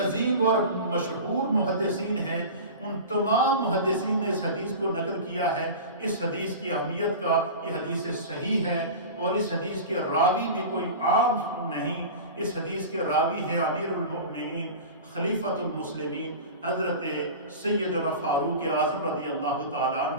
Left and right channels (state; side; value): inverted; both; correlation -0.32